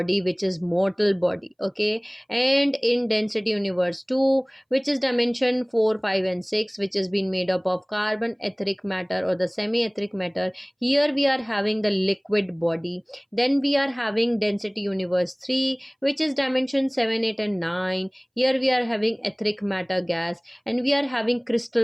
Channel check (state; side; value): identical; both; correlation 1.00